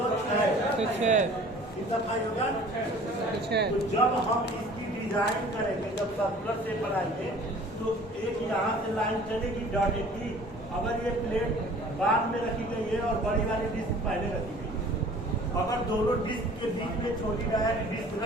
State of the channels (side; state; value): both; normal; correlation 0.48